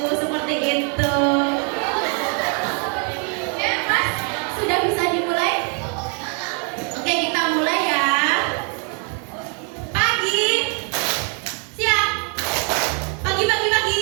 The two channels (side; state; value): left; quieter; 39.0 dB